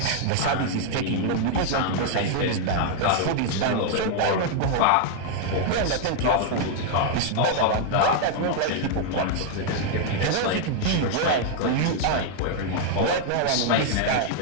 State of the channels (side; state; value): both; different; correlation 0.00